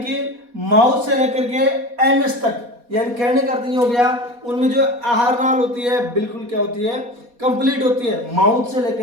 माउथ से लेकर के एनस तक, यानी कहने का अर्थ ये हो गया उनमें जो आहार नाल होती है बिल्कुल क्या होती है कंप्लीट होती है, माउथ से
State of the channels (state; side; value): late; left; 4.2 ms